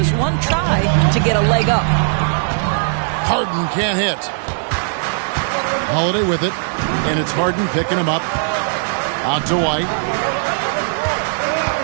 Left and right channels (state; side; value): silent; left; digital silence